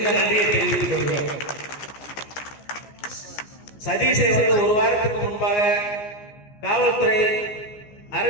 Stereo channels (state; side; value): late; right; 14 ms